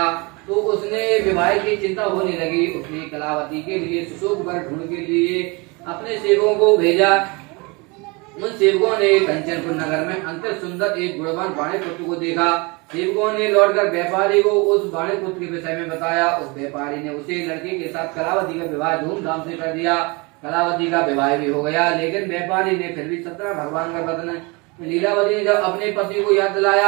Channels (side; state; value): left; quieter; 27.7 dB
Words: तो उसने विवाह की चिंता होने लगी। उसने कलावती के लिए सुशोभ वर ढूंढ के लिए अपने सेवकों को भेजा। उन सेवकों ने कंचनपुर नगर में अंतर सुंदर एक गुणवान वाणी पुत्र को देखा। सेवकों ने लौटकर व्यापारी को उस वाणी पुत्र के विषय में बताया। उस व्यापारी ने उसे लड़के के साथ कलावती का विवाह धूमधाम से कर दिया। कलावती का विवाह भी हो गया, लेकिन व्यापारी ने फिर भी सत्यनारायण भगवान का व्रत। लीलावती ने जब अपने पति को याद